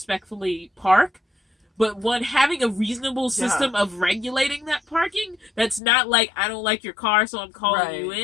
park, but having a reasonable system of regulating that parking, that's not like, I don't like your car, so I'm calling you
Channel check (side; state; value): right; drops out; at 5.8 s